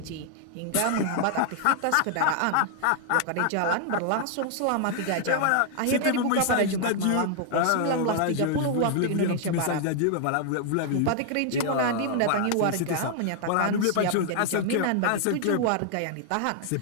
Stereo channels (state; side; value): different; both; correlation 0.00